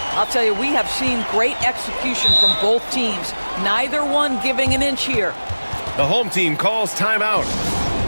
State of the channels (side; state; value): both; inverted; correlation -1.00